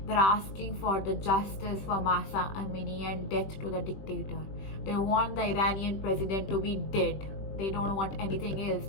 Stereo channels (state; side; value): late; right; 20 ms